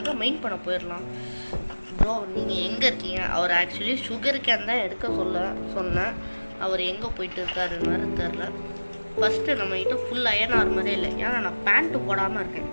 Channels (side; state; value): both; inverted; correlation -1.00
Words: மைன் பண்ண போயிடலாம். ப்ரோ நீங்கள் எங்கே இருக்கீங்க? அவர் ஆக்சுவலி சுகர் கேன் தான் எடுக்க சொன்னேன். அவர் எங்கே போயிட்டு இருக்காருன்னு தெரில. ஃபஸ்ட்டு நம்மகிட்ட ஃபுல் அயன் ஆர்மரே இல்லை, ஏன்னா நான் பேண்ட்டு போடாமல் இருக்கேன்.